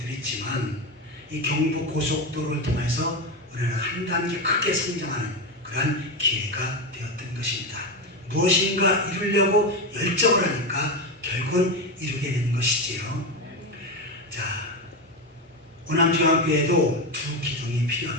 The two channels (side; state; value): both; normal; correlation 0.14